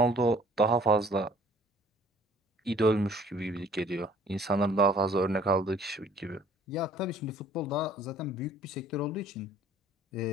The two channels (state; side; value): normal; both; correlation 0.55